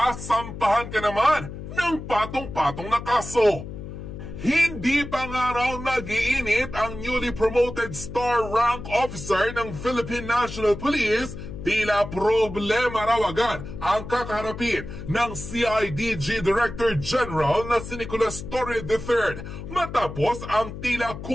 ka naman ng patong-patong na kaso. Hindi pa nga raw nag-iinit ang newly promoted star rank officer ng Philippine National Police. Tila problema raw agad ang kakaharapin ng CIDG Director General na si Nicolas Torre III matapos ang tila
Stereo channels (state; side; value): noise; left; hum, 10 dB below the sound